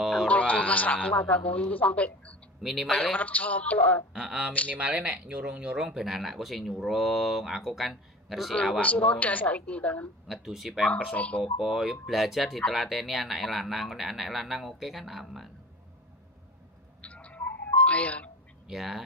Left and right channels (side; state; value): both; normal; correlation 0.37